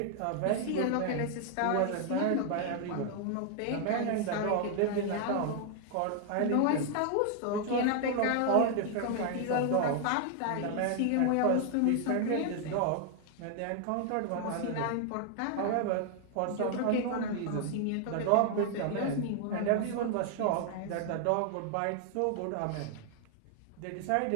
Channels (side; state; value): both; different; correlation 0.00